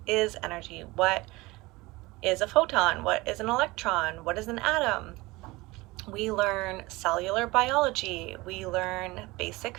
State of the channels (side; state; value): left; quieter; 21.6 dB